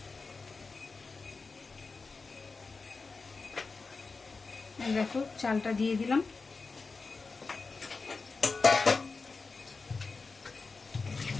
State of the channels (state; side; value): quieter; right; 4.3 dB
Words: দেখো চালটা দিয়ে দিলাম।